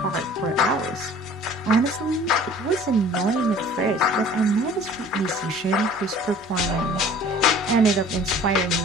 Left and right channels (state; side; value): normal; both; correlation 0.49